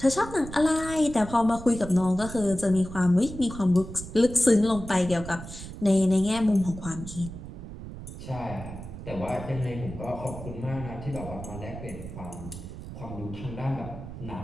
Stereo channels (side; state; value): right; noise; rumble, 11 dB below the sound